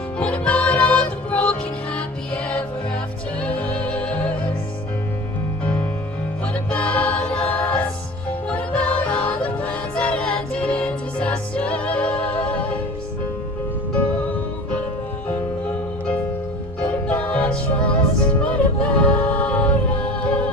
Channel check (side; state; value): both; normal; correlation 0.39